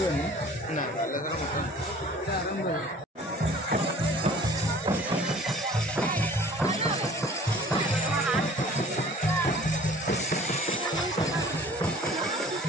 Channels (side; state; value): both; normal; correlation 0.49